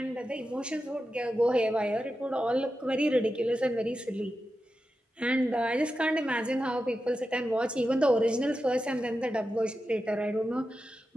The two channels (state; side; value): normal; both; correlation 0.91